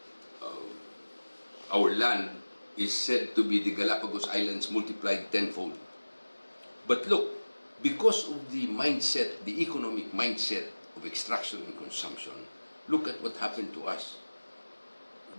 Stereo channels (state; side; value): inverted; both; correlation -1.00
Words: Our land is said to be the Galapagos Islands multiplied tenfold. But look, because of the mindset, the economic mindset of extraction and consumption, look at what happened to us.